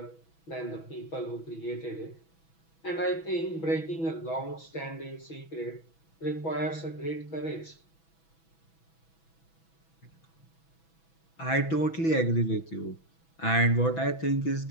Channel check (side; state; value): right; late; 6.1 ms